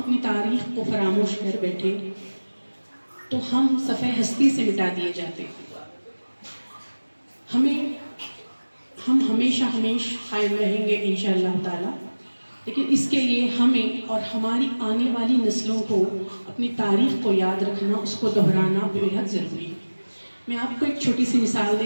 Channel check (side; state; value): both; inverted; correlation -1.00